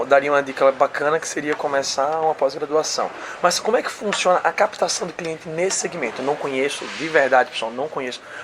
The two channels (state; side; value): identical; both; correlation 1.00